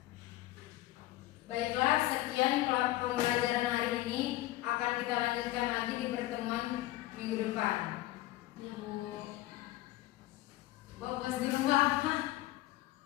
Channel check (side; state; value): right; quieter; 16.7 dB